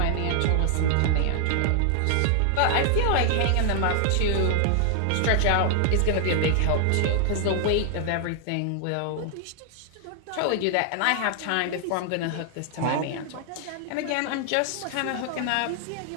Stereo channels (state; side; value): different; both; correlation 0.00